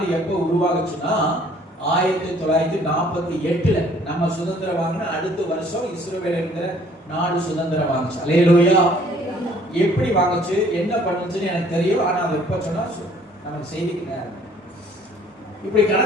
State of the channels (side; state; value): both; normal; correlation 0.58